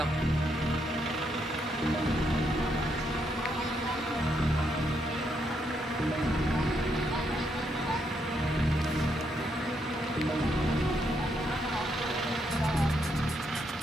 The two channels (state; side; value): normal; both; correlation 0.77